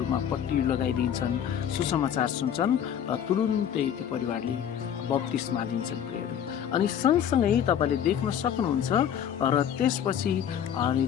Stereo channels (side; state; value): right; quieter; 9.2 dB